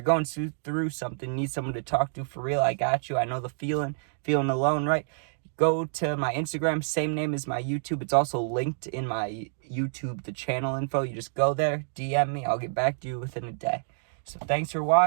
going through something, need someone to talk to for real, I got you. I know the feeling alone, right? Go to my Instagram, same name as my YouTube. It's also linked in my YouTube, the channel info. You just go there, DM me. I'll get back to you within a day. So thanks for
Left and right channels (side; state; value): left; silent; digital silence